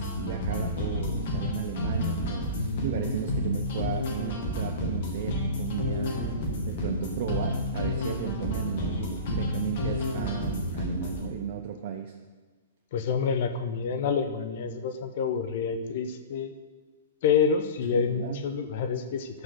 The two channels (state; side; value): inverted; both; correlation -0.33